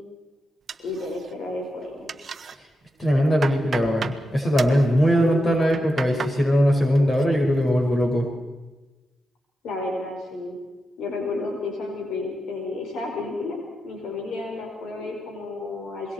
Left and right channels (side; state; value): both; normal; correlation 0.88